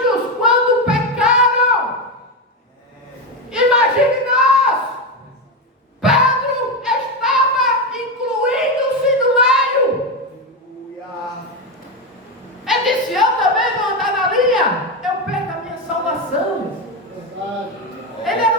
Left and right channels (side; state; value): both; normal; correlation 0.12